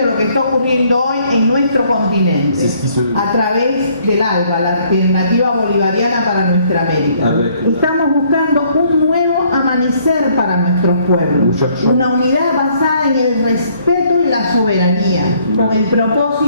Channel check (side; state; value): both; inverted; correlation -0.65